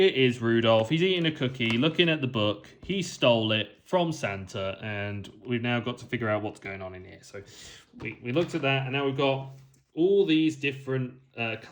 is Rudolph. He's eating a cookie, looking at the book. He stole it from Santa, and we've now got to figure out what's going on in here. So we looked at that, and now we've got all these different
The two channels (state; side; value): identical; both; correlation 1.00